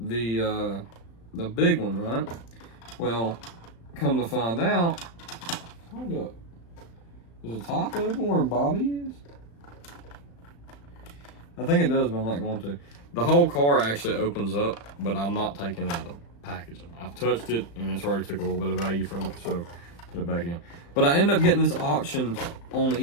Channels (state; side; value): late; right; 35 ms